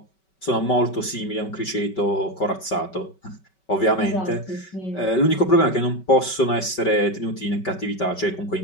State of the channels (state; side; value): late; right; 5.3 ms